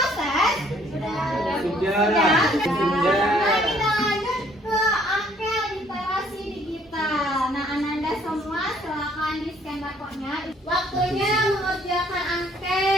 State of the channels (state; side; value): normal; both; correlation 0.62